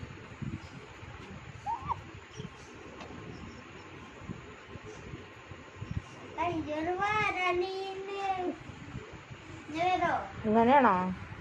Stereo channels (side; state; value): both; identical; correlation 1.00